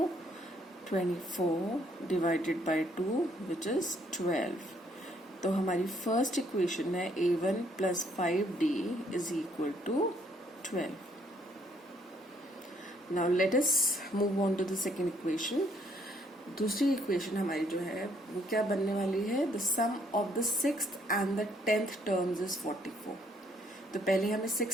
24 divided by 2 which is 12. तो हमारी first equation है a1 plus 5d is equal to 12. Now let us move on to the second equation. दूसरी equation हमारी जो है वो क्या बनने वाली है? The sum of the sixth and the 10th terms is 44. तो पहले हमें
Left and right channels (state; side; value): normal; both; correlation 0.67